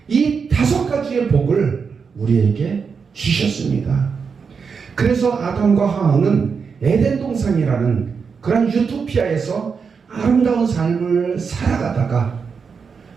이 5가지의 복을 우리에게 주셨습니다. 그래서 아담과 하와는 에덴 동산이라는 그런 유토피아에서 아름다운 삶을 살아가다가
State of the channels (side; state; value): left; quieter; 5.7 dB